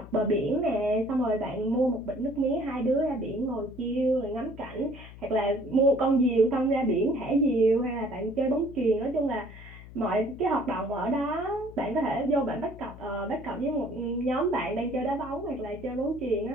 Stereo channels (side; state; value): left; noise; hum, 17 dB below the sound